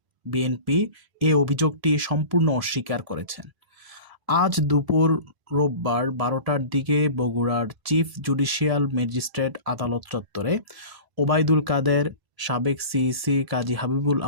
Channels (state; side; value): late; left; 1.0 ms